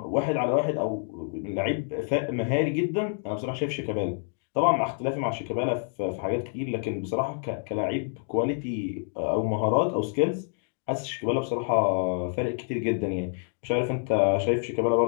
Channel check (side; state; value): right; silent; 60 dB below the other